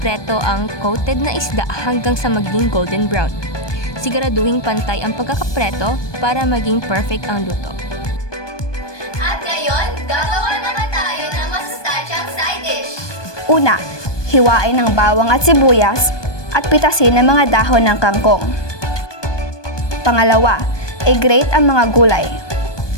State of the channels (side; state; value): right; late; 1.2 ms